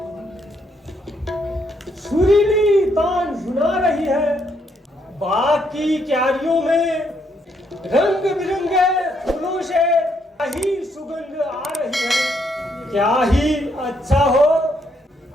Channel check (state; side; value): normal; both; correlation 0.74